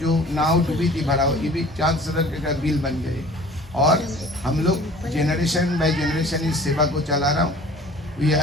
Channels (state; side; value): normal; both; correlation 0.46